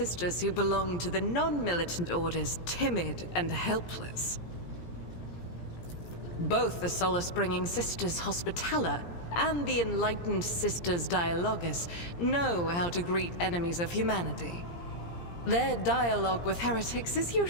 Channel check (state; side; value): late; right; 17 ms